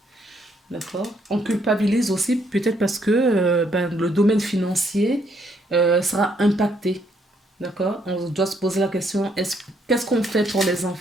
D'accord. On culpabilise aussi peut-être parce que le domaine financier sera impacté. D'accord? On doit se poser la question, qu'est-ce qu'on fait pour les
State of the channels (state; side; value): normal; both; correlation 0.71